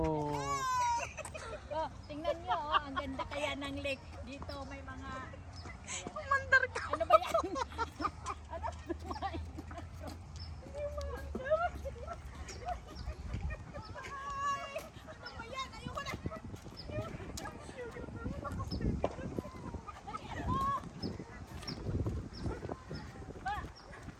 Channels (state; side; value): identical; both; correlation 1.00